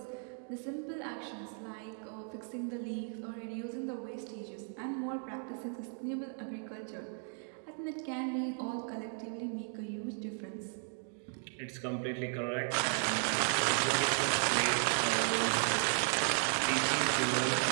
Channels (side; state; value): left; silent; 54 dB below the other